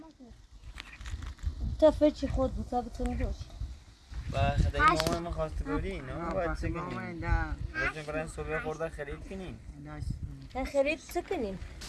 تا فچی خود بود تا بتونی روش و خدای مامان ما خواست گوری نه باید چه کنیم روزی برای صبح خورده خرید کنیم نه خرید چه کنیم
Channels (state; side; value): identical; both; correlation 1.00